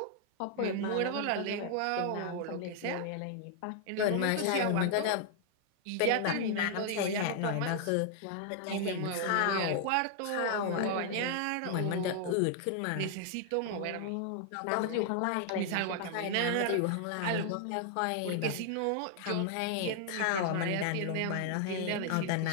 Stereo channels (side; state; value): both; different; correlation 0.00